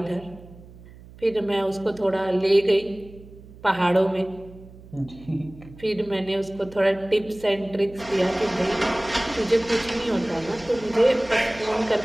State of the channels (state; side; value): noise; right; hum, 20 dB below the sound